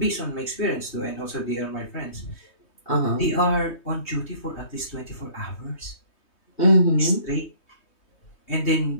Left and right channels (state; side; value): late; right; 3.2 ms